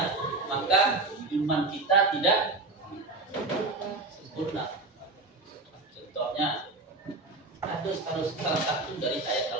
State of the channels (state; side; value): quieter; left; 3.3 dB